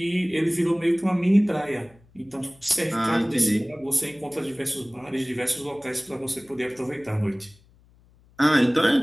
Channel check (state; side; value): noise; left; hum, 30 dB below the sound